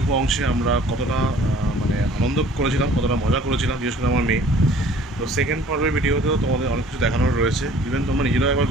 অংশে আমরা কতটা আনন্দ করেছিলাম, কতটা মজা করেছিলাম, বিশেষ করে আমার মেয়ে। তো সেকেন্ড পর্বের ভিডিওতেও তোমাদের অনেক কিছু দেখানোর রয়েছে, ইভেন তোমরা নিজেরাও একবার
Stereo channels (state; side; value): normal; both; correlation 0.52